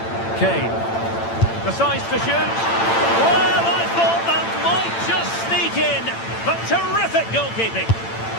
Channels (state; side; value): late; right; 8.9 ms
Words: Kane decides to shoot. Well, I thought that might just sneak in, but terrific goalkeeping.